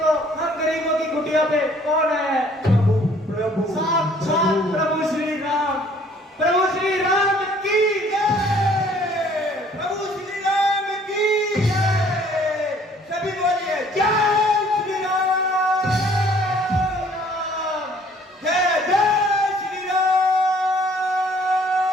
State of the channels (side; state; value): both; normal; correlation 0.58